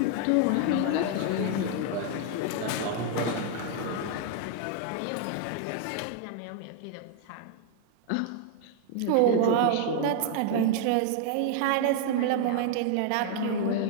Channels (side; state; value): both; different; correlation 0.00